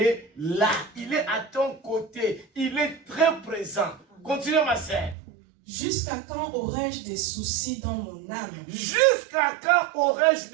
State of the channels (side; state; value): left; drops out; at 5.2 s